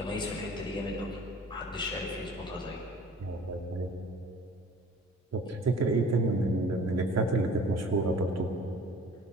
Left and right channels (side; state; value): both; normal; correlation 0.48